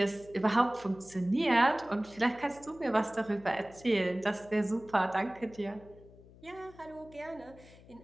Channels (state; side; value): noise; left; hum, 22 dB below the sound